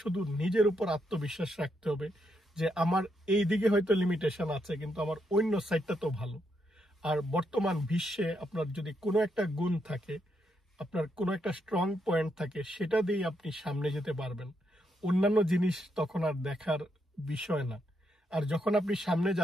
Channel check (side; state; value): both; normal; correlation 0.79